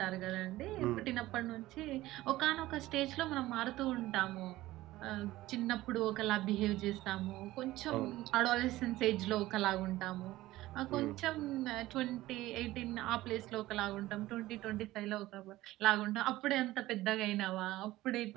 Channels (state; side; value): quieter; left; 16.9 dB